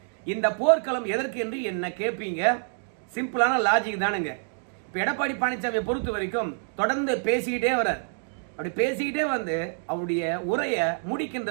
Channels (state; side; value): silent; left; digital silence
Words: இந்த போர்க்களம் எதற்கு என்று என்ன கேட்பீங்க? சிம்பிளான லாஜிக் தானுங்க. இப்ப எடப்பாடி பழனிசாமியை பொறுத்த வரைக்கும் தொடர்ந்து பேசிக்கிட்டே வர்றார். அப்படி பேசிக்கிட்டே அவருடைய உரையை முடிக்கின்ற